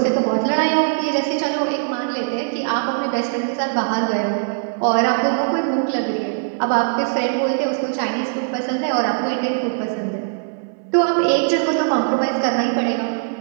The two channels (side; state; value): left; silent; digital silence